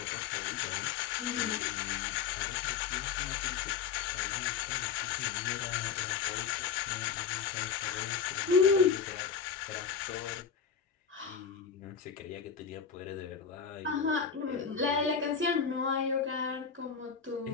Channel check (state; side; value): quieter; right; 6.7 dB